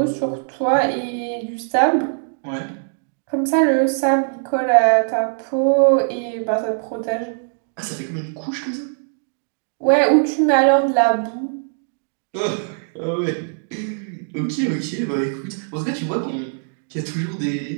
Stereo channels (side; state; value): left; silent; digital silence